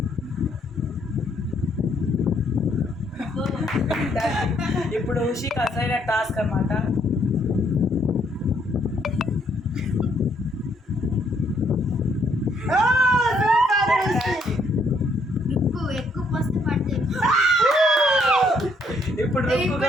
ఇప్పుడు ఉషికి అసైన టాస్క్ అన్నమాట. ఎక్కువ పోస్తే పడుతుంది. ఇప్పుడు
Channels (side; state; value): both; normal; correlation 0.70